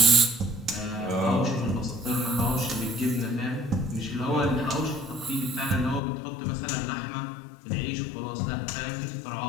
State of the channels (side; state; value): right; drops out; at 6.0 s